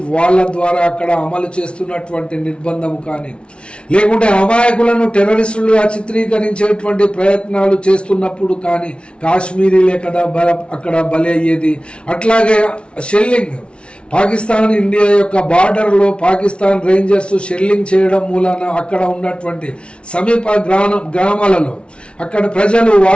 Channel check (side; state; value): right; late; 0.058 ms